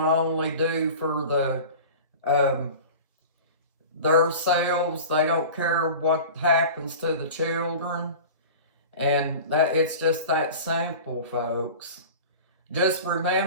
to only do for their selves. They don't care what happens to the children, and that it's just that simple, folks. Just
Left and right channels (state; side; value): inverted; both; correlation -0.36